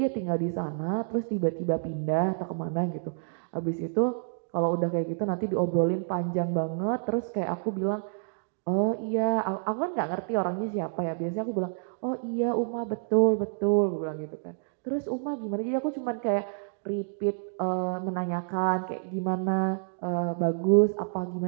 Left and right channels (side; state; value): left; silent; digital silence